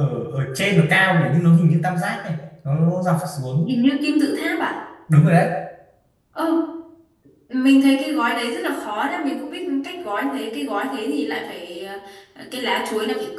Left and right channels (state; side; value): identical; both; correlation 1.00